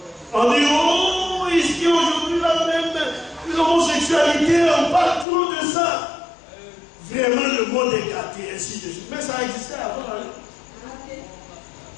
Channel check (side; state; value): right; drops out; at 5.2 s